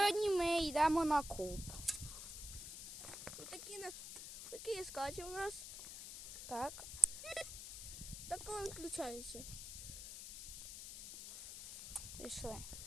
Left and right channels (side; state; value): left; noise; hiss, 8 dB below the sound